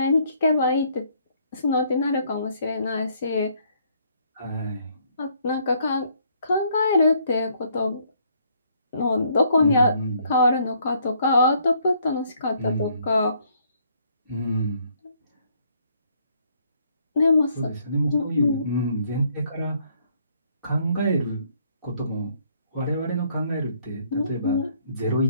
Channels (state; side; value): inverted; both; correlation -0.67